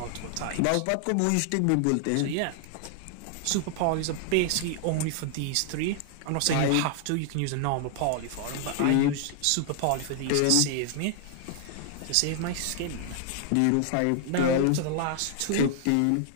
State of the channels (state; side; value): different; both; correlation 0.00